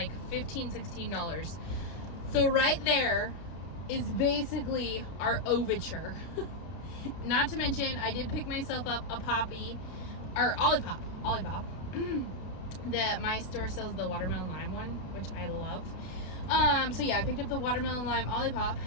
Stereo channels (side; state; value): right; late; 32 ms